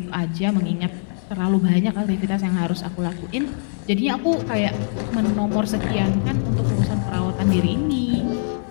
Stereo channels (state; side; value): silent; right; digital silence